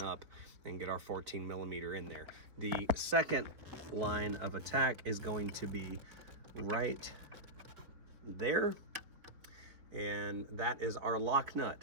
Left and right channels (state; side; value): late; left; 4.2 ms